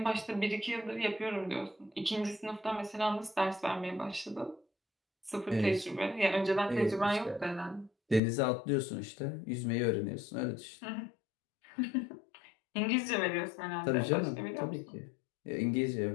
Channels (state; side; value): drops out; right; at 8.2 s